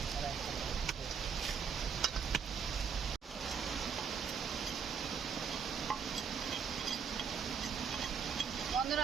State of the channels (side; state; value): left; quieter; 6.5 dB